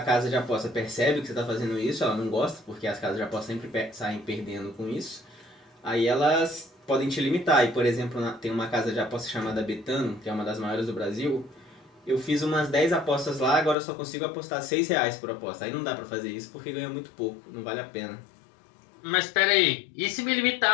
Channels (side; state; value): right; drops out; at 13.8 s